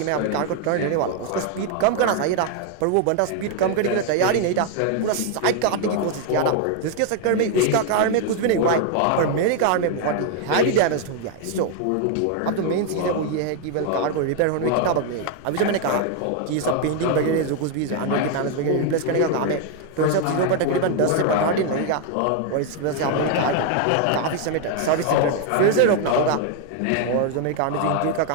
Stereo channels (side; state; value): both; different; correlation 0.00